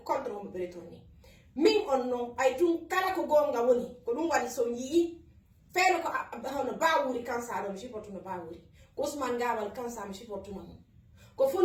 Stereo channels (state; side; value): identical; both; correlation 1.00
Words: contre mo be retourni min on non ay tun kala ko gonga woni ko dum wadi so yi feelo ko hono bawuri kansa do mi siportu no bawuri ko Ousmane Gawal kansa mi siportu mo ko